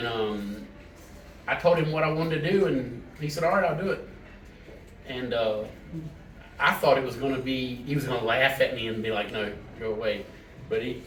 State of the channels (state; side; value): identical; both; correlation 1.00